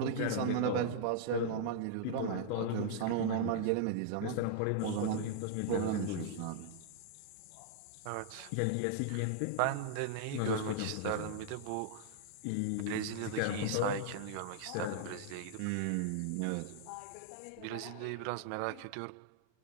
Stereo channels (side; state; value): both; different; correlation -0.01